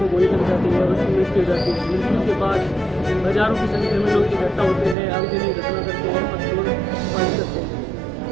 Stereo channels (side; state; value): left; drops out; at 5.0 s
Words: गोली लग जाती है और उसकी मृत्यु हो जाती है। मृत्यु के बाद हजारों की संख्या में लोग इकट्ठा होते हैं, आगजनी घटना करते हैं, पत्थरबाजी करते हैं।